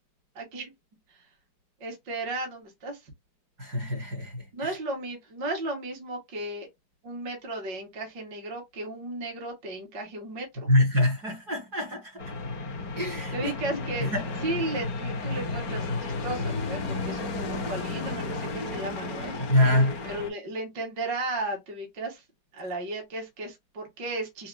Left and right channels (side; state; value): left; late; 4.8 ms